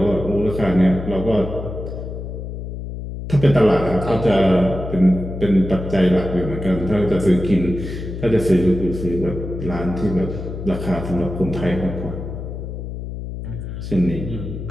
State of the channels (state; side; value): noise; left; hum, 8 dB below the sound